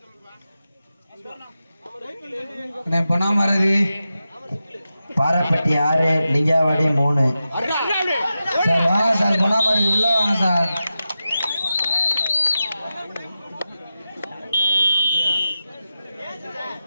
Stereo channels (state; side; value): inverted; both; correlation -0.92